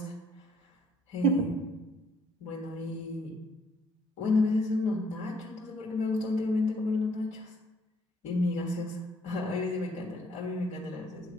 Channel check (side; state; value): both; normal; correlation 0.66